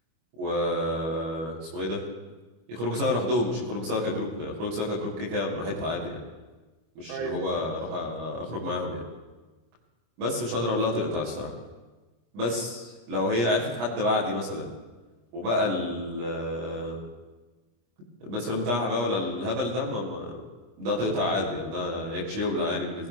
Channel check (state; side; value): late; left; 25 ms